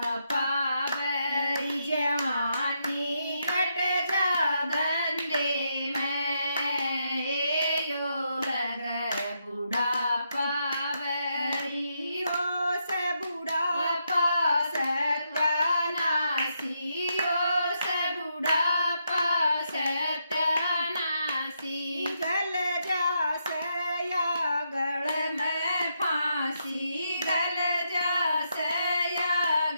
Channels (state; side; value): inverted; both; correlation -0.80